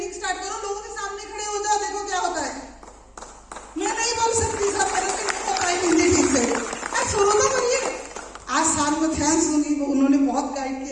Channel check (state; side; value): identical; both; correlation 1.00